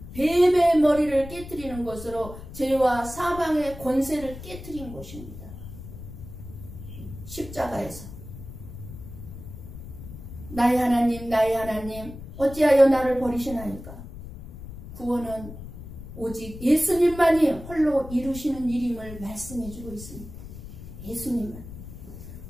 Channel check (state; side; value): noise; left; rumble, 13 dB below the sound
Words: 뱀의 머리를 깨뜨리는 것으로 죄와 사망의 권세를 깨뜨린 것입니다. 십자가에서 나의 하나님 어찌하여 나를 버리시나이까. 구원은 오직 예수님만이 홀로 이루시는 일임을 말씀해주고 있습니다. 예수님만.